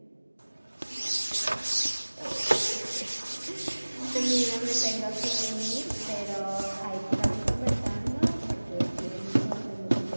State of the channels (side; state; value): both; inverted; correlation -1.00